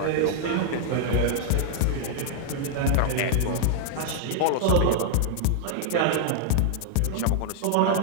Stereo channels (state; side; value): different; both; correlation -0.01